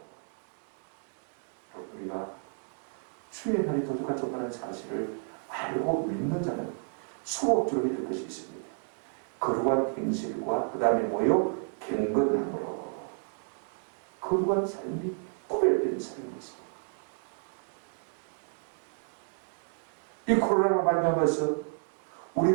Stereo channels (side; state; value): left; silent; 57 dB below the other